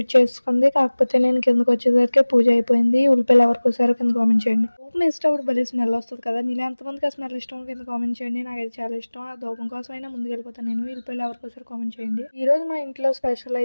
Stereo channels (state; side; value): inverted; both; correlation -1.00